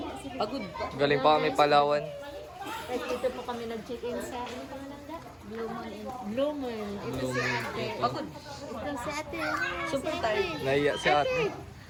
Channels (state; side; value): identical; both; correlation 1.00